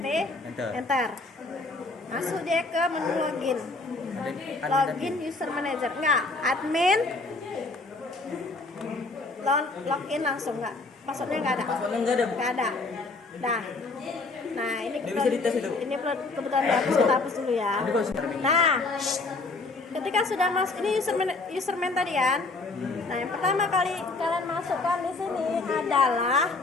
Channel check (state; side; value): quieter; right; 3.5 dB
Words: Enter. Masuk dia ke menu login. Login user manager. Enggak, admin. Login langsung enggak? Passwordnya enggak ada. Passwordnya nggak ada, Bu. Enggak ada. Dah. Nah, ini Nggak bisa dites itu. ini kebetulan dihapus, kita hapus dulu ya. Ini kok sudah terminal. Nah, ketika sudah masuk ini userman tadi kan. Nah, yang pertama kali kalian masukkan di sini adalah